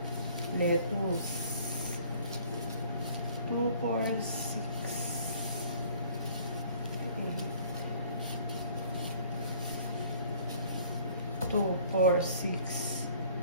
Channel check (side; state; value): both; inverted; correlation -0.55